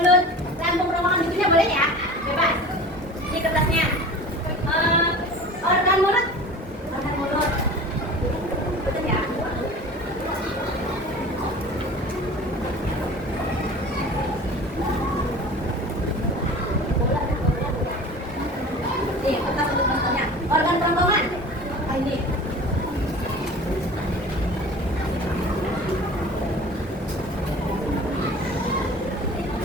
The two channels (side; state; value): both; normal; correlation 0.40